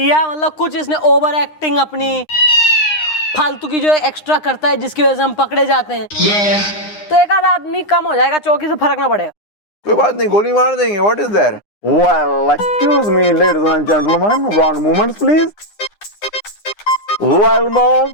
या मतलब कुछ इसने ओवर एक्टिंग अपनी फालतू की जो एक्स्ट्रा करता है जिसकी वजह से हम पकड़े जाते हैं, तो एक आधा आदमी कम हो जाएगा, चौकी से फर्क ना पड़ेगा। कोई बात नहीं, गोली मार देंगे। What is that? Well, excuse me, ladies and gentlemen, one moment please. Well, mom,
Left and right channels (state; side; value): late; right; 9.8 ms